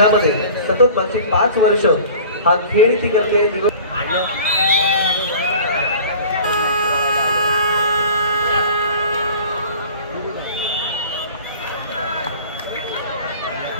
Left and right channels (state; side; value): inverted; both; correlation -0.44